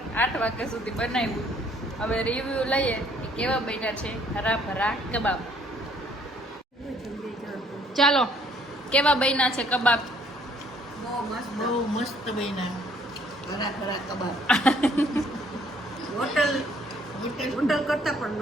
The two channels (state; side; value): normal; both; correlation 0.62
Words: વાગ્યા સુધી બનાવ્યું. હવે રિવ્યુ લઈએ કે કેવા બન્યા છે હરાભરા કબાબ. ચાલો કેવા બન્યા છે કબાબ? બહુ મસ્ત બન્યા. ઘરા કબાબ. હોટલ કરતા પણ